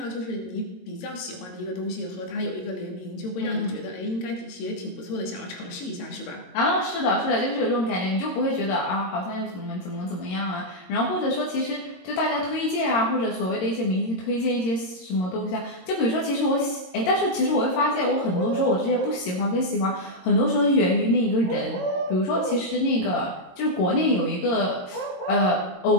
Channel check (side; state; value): right; late; 22 ms